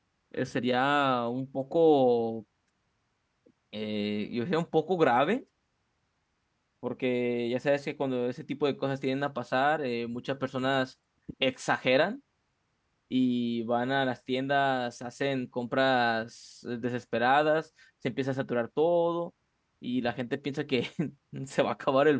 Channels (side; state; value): both; identical; correlation 1.00